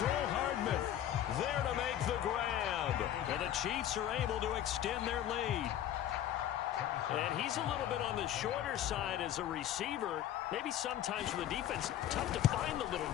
Hardman there to make the grab. And the Chiefs are able to extend their lead. And he's a little bit on the shorter side as a receiver. Maybe sometimes for the defense, tough to find the little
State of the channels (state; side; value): quieter; right; 11.4 dB